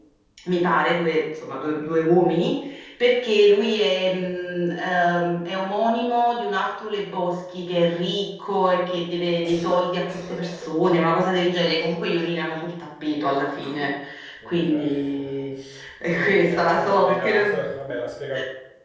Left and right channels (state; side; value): identical; both; correlation 1.00